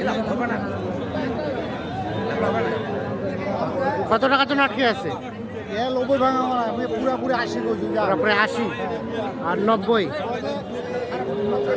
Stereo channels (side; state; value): both; identical; correlation 1.00